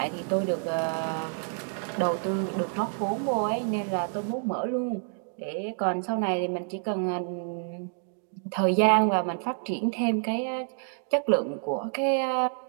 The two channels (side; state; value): left; silent; 59 dB below the other